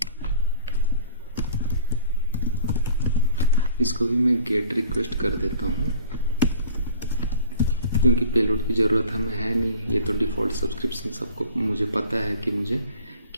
इसको भी मैं गेट रिक्वेस्ट कर देता हूँ क्योंकि पेलोड की ज़रूरत हमें है नहीं। ये तो डिफ़ॉल्ट सब्सक्रिप्शन सबको मुझे पता है कि मुझे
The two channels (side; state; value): both; inverted; correlation -0.47